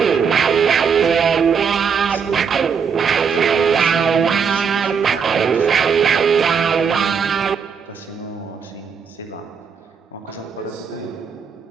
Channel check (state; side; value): quieter; left; 6.4 dB